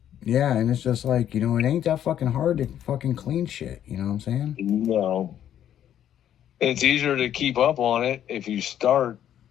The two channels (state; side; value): quieter; right; 10.5 dB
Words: Yeah, and it's just like, you know, it ain't that fucking hard to fucking clean shit. You know what I'm saying? No, it's easier to keep up on it if you start